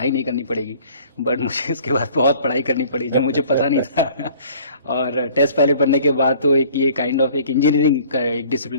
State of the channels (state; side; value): inverted; both; correlation -0.52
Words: नहीं करनी पड़ेगी, बट मुझे इसके बाद बहुत पढ़ाई करनी पड़ी जो मुझे पता नहीं था। और टेस्ट पायलट बनने के बाद तो एक ये काइंड ऑफ एक इंजीनियरिंग का एक